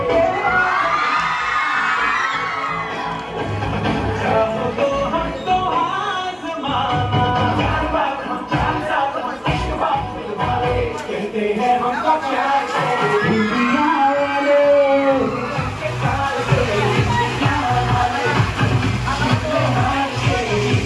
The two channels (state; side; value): identical; both; correlation 1.00